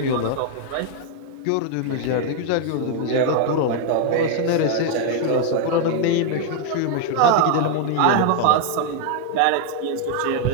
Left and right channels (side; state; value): both; different; correlation 0.00